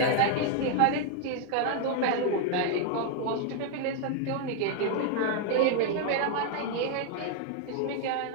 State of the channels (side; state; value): both; different; correlation 0.00